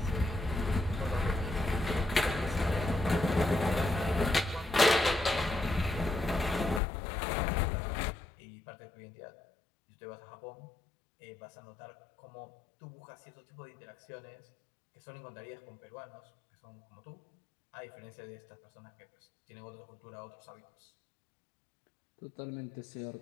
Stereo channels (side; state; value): right; drops out; at 6.8 s